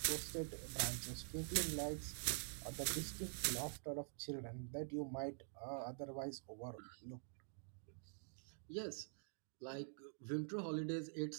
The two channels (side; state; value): left; silent; digital silence